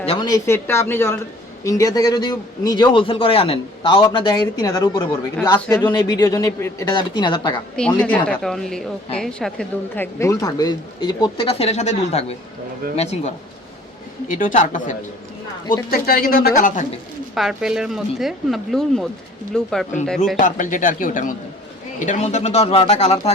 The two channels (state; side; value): normal; both; correlation 0.53